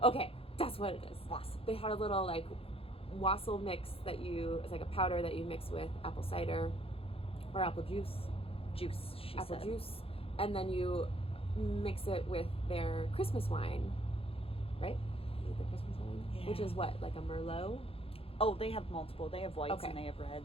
Okay, that's what it is. Wassail. They had a little like wassail mix it's like a powder that you mix with apple cider or apple juice. She said. Juice, and then you mix it with their Christmas wine, right? Is it the Christmas wine? Yeah. Which is what, like a Merlot? Oh, they have multiple. They have whites Okay. and they have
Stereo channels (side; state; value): right; late; 0.27 ms